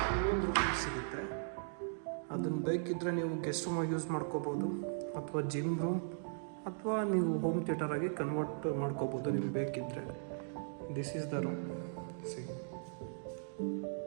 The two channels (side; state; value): left; silent; digital silence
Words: ಇನ್ನೊಂದು ರೂಮ್ ಸಿಗುತ್ತೆ. ಅದನ್ನು ಬೇಕಿದ್ದರೆ ನೀವು ಗೆಸ್ಟ್ ರೂಮಾಗಿ ಯೂಸ್ ಮಾಡ್ಕೋಬೋದು, ಅಥವಾ ಜಿಮ್ ರೂಮ್, ಅಥವಾ ನೀವು ಹೋಮ್ ಥಿಯೇಟರಾಗಿ ಕನ್ವರ್ಟ್ ಮಾಡ್ಕೋಬೋದು ನಿಮ್ಗೆ ಬೇಕಿದ್ದರೆ. This is the room. C,